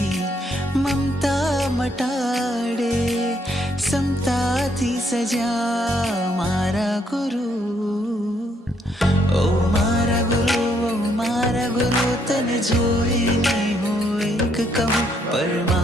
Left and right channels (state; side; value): normal; both; correlation 0.71